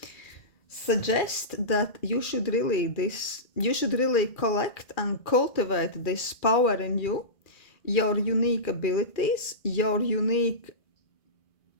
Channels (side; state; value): right; late; 2.4 ms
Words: suggest that you should really collect and cultivate this power in you, your unique abilities, your unique